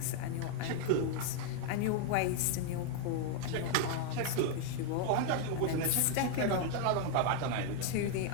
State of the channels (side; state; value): both; different; correlation 0.00